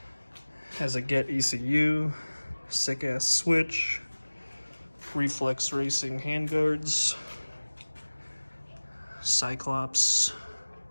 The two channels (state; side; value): inverted; both; correlation -1.00